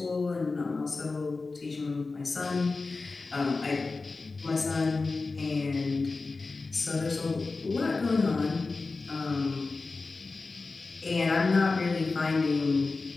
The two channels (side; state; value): right; quieter; 3.8 dB